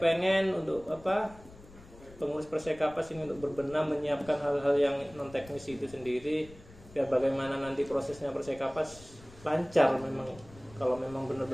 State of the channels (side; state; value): left; noise; rumble, 21 dB below the sound